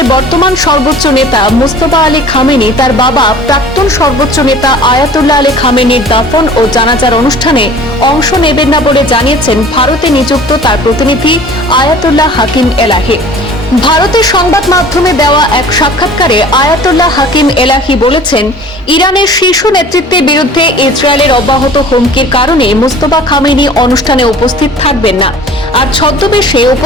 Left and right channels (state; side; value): normal; both; correlation 0.46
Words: বর্তমান সর্বোচ্চ নেতা মোস্তফা আলী খামেনি তার বাবা প্রাক্তন সর্বোচ্চ নেতা আয়াতুল্লাহ আলী খামেনির দাফন ও জানাজার অনুষ্ঠানে অংশ নেবেন না বলে জানিয়েছেন ভারতে নিযুক্ত তার প্রতিনিধি আয়াতুল্লাহ হাকিম এলাহি। ভারতের সংবাদ মাধ্যমে দেওয়া এক সাক্ষাৎকারে আয়াতুল্লাহ হাকিম এলাহি বলেছেন, ইরানের শীর্ষ নেতৃত্বের বিরুদ্ধে ইসরায়েলের অব্যাহত হুমকির কারণে মোস্তফা খামেনি অনুষ্ঠানে উপস্থিত থাকবেন না। আর ছদ্মবেশে